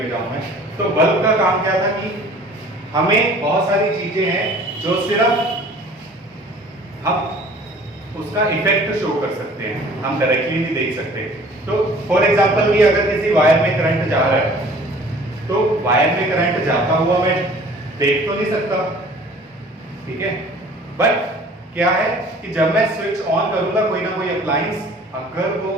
जाऊं मैं, तो बल्ब का काम क्या था कि हमें बहुत सारी चीजें हैं जो सिर्फ हम उसका इफेक्ट शो कर सकते हैं, हम डायरेक्टली नहीं देख सकते। तो फॉर एग्जांपल कि अगर किसी वायर में करंट जा रहा है, तो वायर में करंट जाता हुआ मैं देख तो नहीं सकता, ठीक है, बट क्या है कि जब मैं स्विच ऑन करूंगा कोई ना कोई अप्लायंस, अगर वो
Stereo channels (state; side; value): normal; both; correlation 0.50